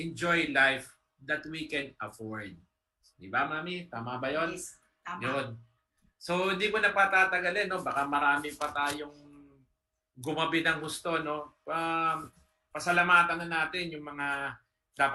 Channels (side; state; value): both; identical; correlation 1.00